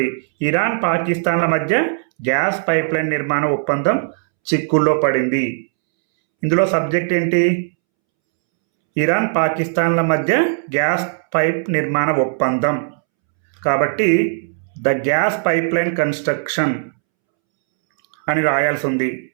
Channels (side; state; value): left; silent; 67 dB below the other